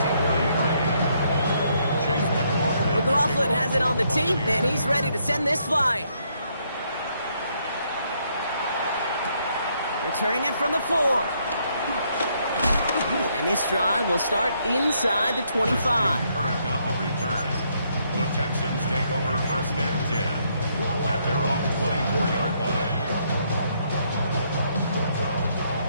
McLaughlin has it on the tee, and he's ready to send this flying. Returning it from the 4. And this drive will start inside the 25. On the return, the Texans take over 1st and 10 at their own 24-yard line.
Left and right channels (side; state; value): both; inverted; correlation -0.72